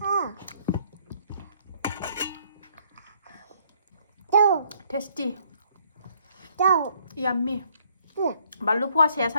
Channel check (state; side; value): inverted; both; correlation -0.65